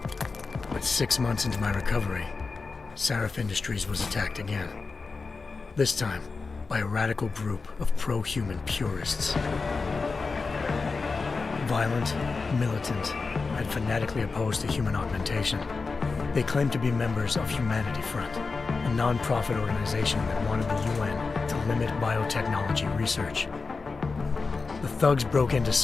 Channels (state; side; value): quieter; right; 4.3 dB